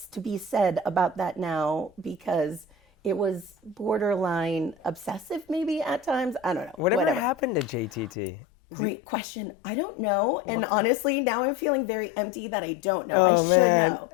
to be said about that now, because it was borderline obsessive maybe at times. I don't know. Whatever happened to JTT? Great question. I don't know. And honestly, now I'm feeling very empty that I don't know. I should know.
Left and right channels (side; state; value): right; drops out; at 8.1 s